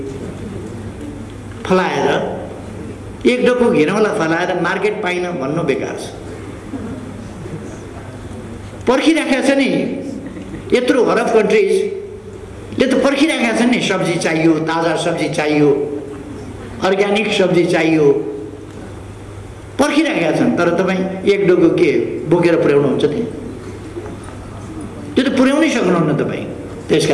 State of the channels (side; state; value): both; identical; correlation 1.00